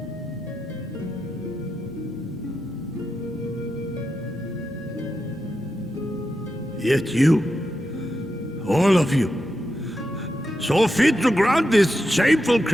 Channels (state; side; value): normal; both; correlation 0.87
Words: Yet you, all of you, saw fit to grant this shameful